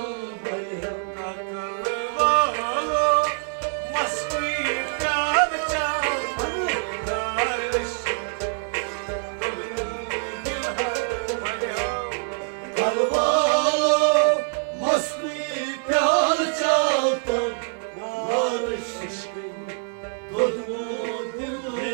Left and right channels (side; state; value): left; silent; 62 dB below the other